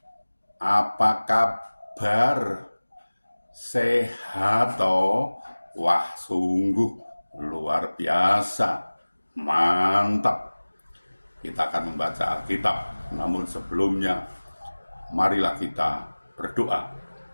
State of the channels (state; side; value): inverted; both; correlation -1.00